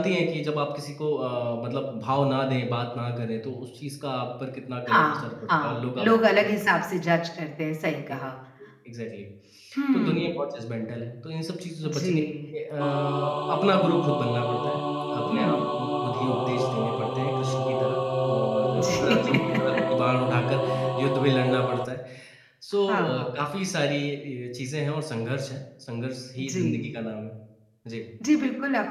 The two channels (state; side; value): identical; both; correlation 1.00